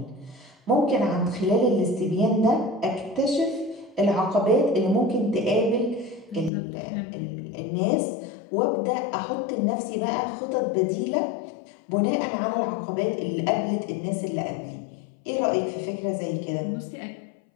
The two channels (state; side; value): drops out; right; at 6.5 s